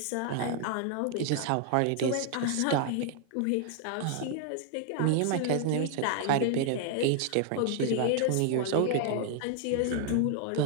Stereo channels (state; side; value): different; both; correlation 0.00